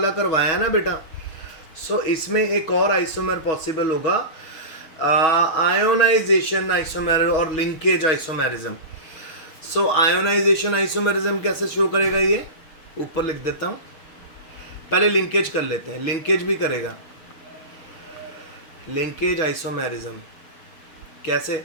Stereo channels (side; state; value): right; late; 6.6 ms